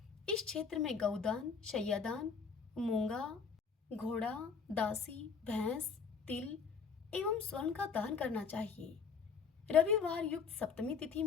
इस क्षेत्र में गौदान, शय्यादान, मूंगा, घोड़ा, दासी, भैंस, तिल एवं स्वर्ण का दान करना चाहिए। रविवार युक्त सप्तमी तिथि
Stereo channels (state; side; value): quieter; right; 5.8 dB